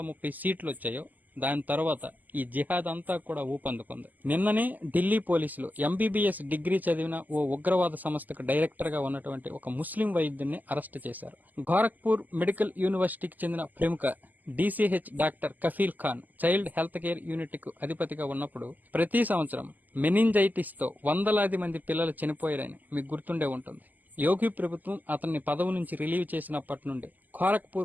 సీట్లు వచ్చాయో దాని తర్వాత ఈ జిహాద్ అంతా కూడా ఊపందుకుంది. నిన్ననే ఢిల్లీ పోలీసులు ఎంబీబీఎస్ డిగ్రీ చదివిన ఓ ఉగ్రవాద సంస్థకు డైరెక్టర్ గా ఉన్నటువంటి ఒక ముస్లిం వైద్యుడిని అరెస్ట్ చేశారు. గోరఖ్పూర్ మెడికల్ యూనివర్సిటీకి చెందిన ప్రముఖ DCH doctor Kafeel Khan child health care unit కు అధిపతిగా ఉన్నప్పుడు ప్రతి సంవత్సరం మెనింజైటిస్ తో వందలాది మంది పిల్లలు చనిపోయారని మీకు గుర్తుండే ఉంటుంది. యోగి ప్రభుత్వం అతన్ని పదవి నుంచి రిలీవ్ చేసినప్పటి నుండి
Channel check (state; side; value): late; left; 0.083 ms